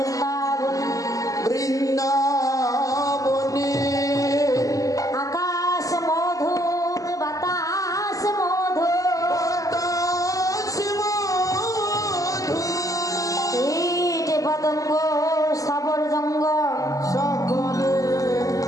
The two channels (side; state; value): right; late; 0.17 ms